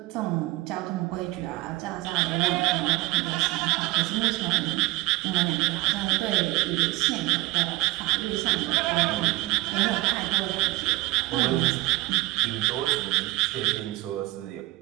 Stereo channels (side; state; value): left; quieter; 19.8 dB